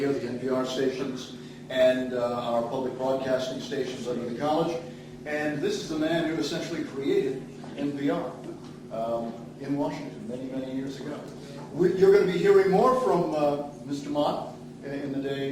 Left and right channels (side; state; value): both; identical; correlation 1.00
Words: the NPR stations, and our public broadcasting stations under the college. And this is the man who essentially created NPR in Washington many years ago. You're going to be hearing more from Mr. Mott in the